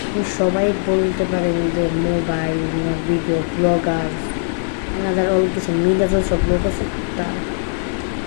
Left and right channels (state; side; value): silent; right; 58 dB below the other